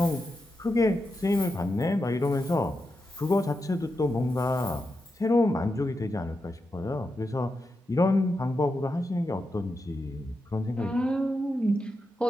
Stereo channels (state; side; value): normal; both; correlation 0.87